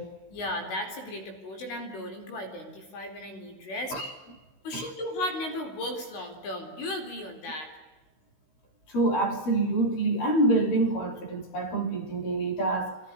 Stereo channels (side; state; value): right; late; 16 ms